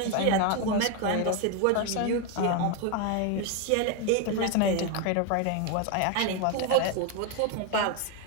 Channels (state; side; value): different; both; correlation 0.02